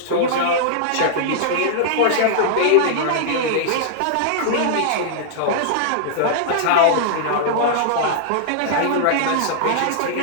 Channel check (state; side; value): different; both; correlation -0.01